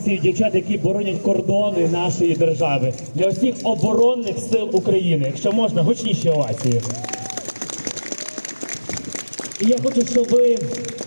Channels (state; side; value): inverted; both; correlation -1.00